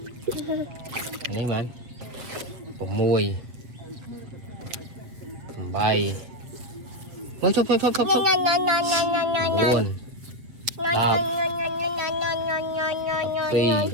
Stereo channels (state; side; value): late; left; 7.8 ms